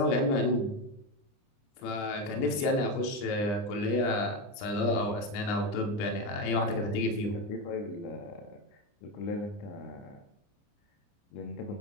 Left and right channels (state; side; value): late; right; 29 ms